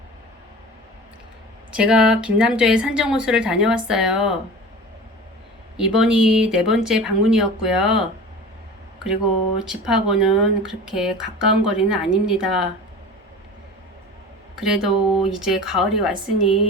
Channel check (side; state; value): both; normal; correlation 0.37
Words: 제가 김남조의 산정호수를 다녀왔어요. 이번이 네 번째 방문이었고요. 그리고 집하고는 그렇게 가까운 거리는 아닙니다. 그래도 이제 가을이